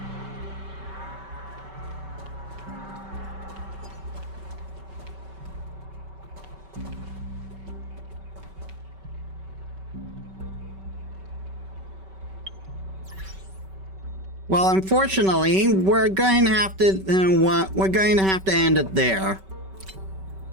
Well, unfortunately, we're going to have to end it there.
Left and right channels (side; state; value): left; late; 5.2 ms